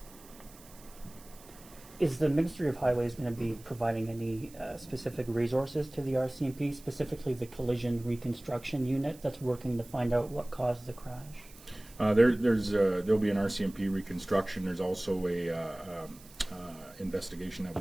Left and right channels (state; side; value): noise; right; hiss, 22 dB below the sound